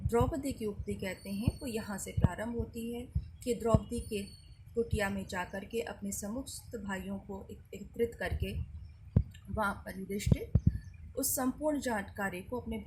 की उक्ति कहते हैं, वो यहाँ से प्रारंभ होती है कि द्रौपदी के कुटिया में जाकर के अपने समस्त भाइयों को एकत्रित करके वहाँ पर युधिष्ठिर उस संपूर्ण जानकारी को अपने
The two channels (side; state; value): both; identical; correlation 1.00